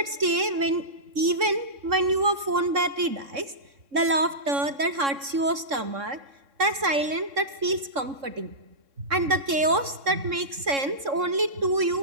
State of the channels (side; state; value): left; late; 3.6 ms